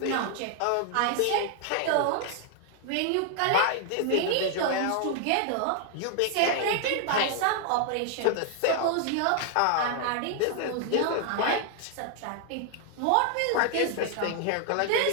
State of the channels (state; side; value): different; both; correlation 0.00